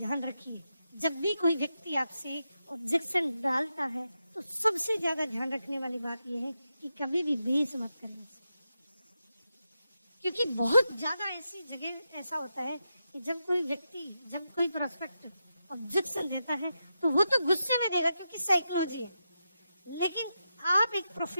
रखिए, जब भी कोई व्यक्ति आपसे ऑब्जेक्शन डालता है तो सबसे ज्यादा ध्यान रखने वाली बात यह है कि कभी भी बेस मत करना, क्योंकि बहुत ज्यादा ऐसी जगह ऐसा होता है कि जब कोई व्यक्ति, जब कोई प्रोस्पेक्ट ऑब्जेक्शन देता है तो वो तो गुस्से में देगा क्योंकि साइकोलॉजी है, लेकिन आप एक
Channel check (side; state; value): both; inverted; correlation -0.87